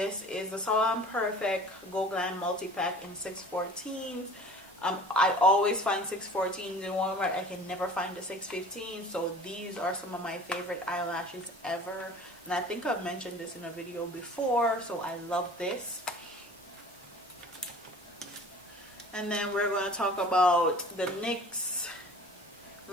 is the Salon Perfect Go Glam Multi-Pack in 614s. I always find 614s in Walmart. I can never find the 615. So these are some of my favorite eyelashes ever. And I think I've mentioned this in a video before. So I love this. And then we're going to talk about the NYX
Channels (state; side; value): normal; both; correlation 0.45